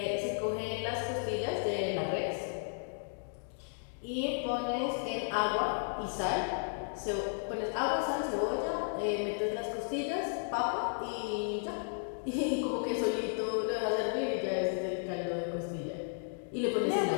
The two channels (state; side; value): silent; right; digital silence